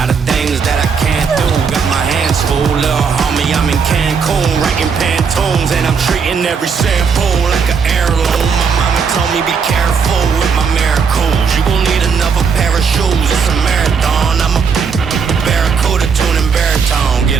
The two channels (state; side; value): quieter; left; 5.9 dB